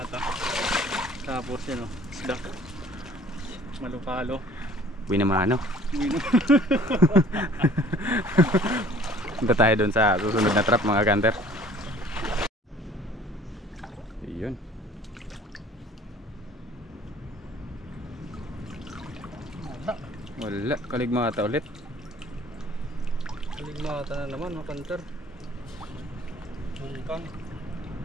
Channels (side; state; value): both; normal; correlation 0.53